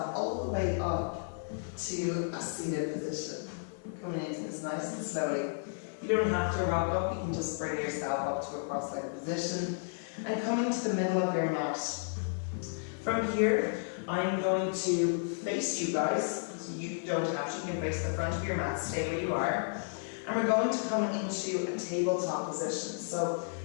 all the way up to a seated position. Coming into this nice and slowly. You don't have to rock up, you can just bring yourself up to a cross-legged position and coming to the middle of your mat. From here, I'm going to face you guys, so you don't have to, you can face the front of your mat, stay where you are. And we're going to come into a tabletop position. So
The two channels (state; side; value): silent; right; 56 dB below the other